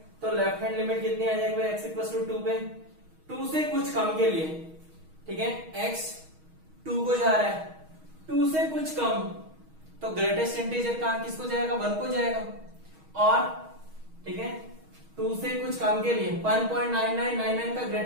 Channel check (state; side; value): late; left; 6.3 ms